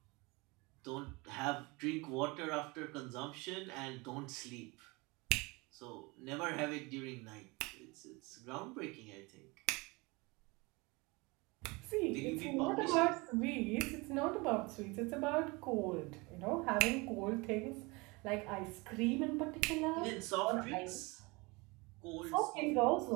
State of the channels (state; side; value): quieter; left; 25.8 dB